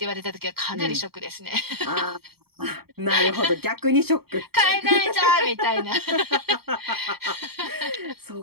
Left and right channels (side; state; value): left; late; 0.96 ms